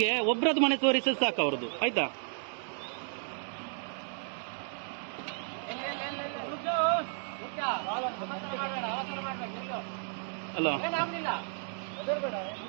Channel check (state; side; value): silent; left; 56 dB below the other